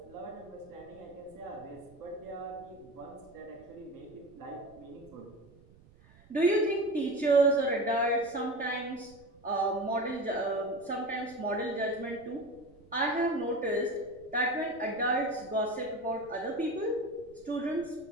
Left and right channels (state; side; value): noise; right; rumble, 25 dB below the sound